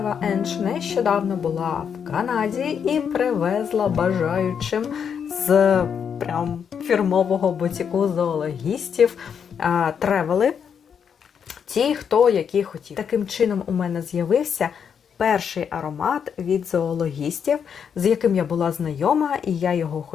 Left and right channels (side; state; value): right; quieter; 7.3 dB